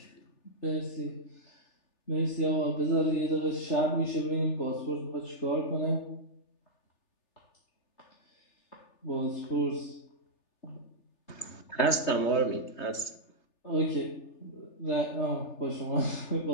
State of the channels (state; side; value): late; right; 3.3 ms